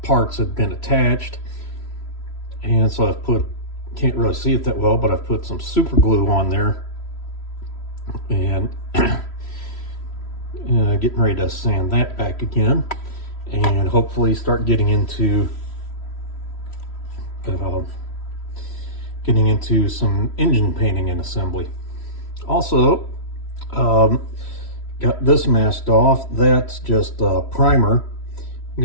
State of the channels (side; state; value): right; late; 3.1 ms